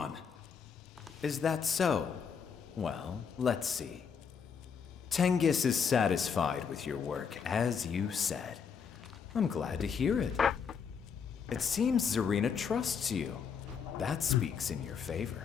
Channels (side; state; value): right; quieter; 6.6 dB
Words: Is that so? Well, let's see. Tengus is satisfied with your work, as you said. I'm glad to hear it. It seems Zarina trusts you. That speaks in your